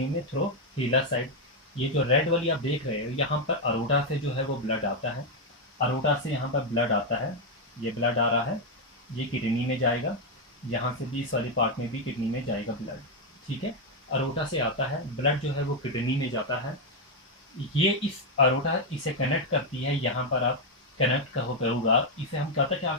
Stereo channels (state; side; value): normal; both; correlation 0.02